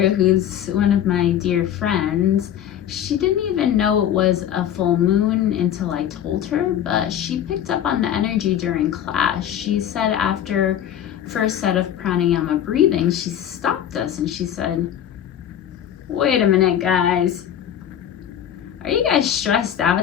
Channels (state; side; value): quieter; right; 10.2 dB